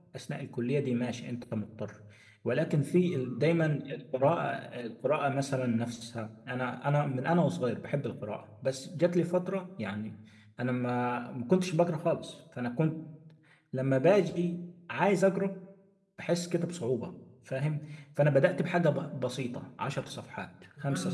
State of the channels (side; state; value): both; identical; correlation 1.00